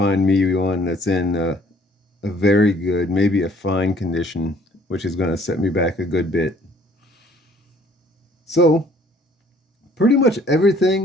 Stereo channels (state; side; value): normal; both; correlation 0.58